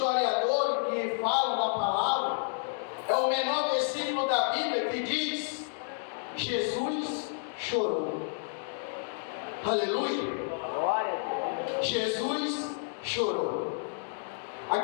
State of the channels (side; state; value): right; silent; digital silence